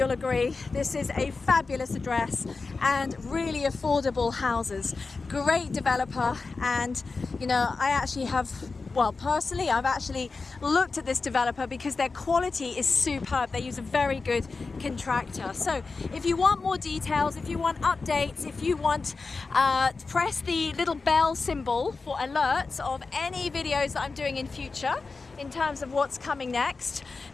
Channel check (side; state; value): right; quieter; 4.1 dB